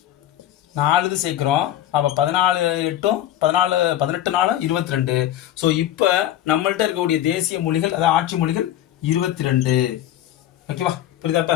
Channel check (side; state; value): right; quieter; 12.5 dB